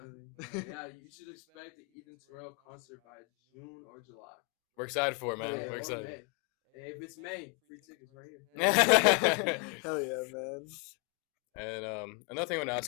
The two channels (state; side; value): quieter; right; 33.7 dB